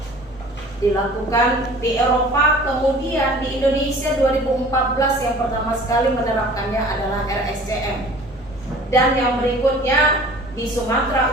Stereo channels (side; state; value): both; normal; correlation 0.46